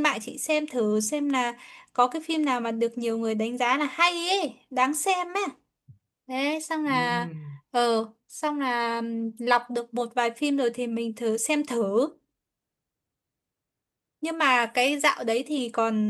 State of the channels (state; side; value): identical; both; correlation 1.00